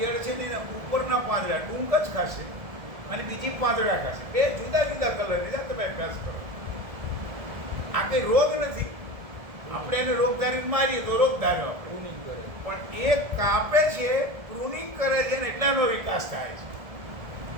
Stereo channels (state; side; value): late; left; 1.7 ms